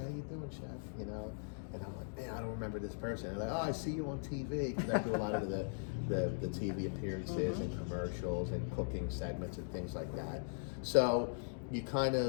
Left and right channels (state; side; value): silent; right; digital silence